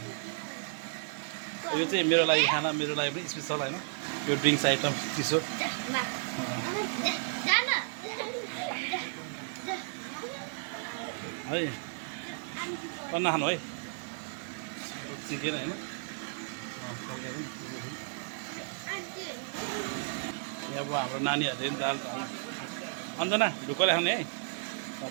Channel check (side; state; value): left; silent; digital silence